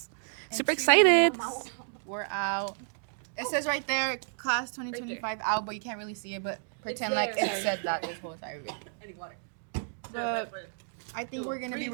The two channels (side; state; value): left; silent; digital silence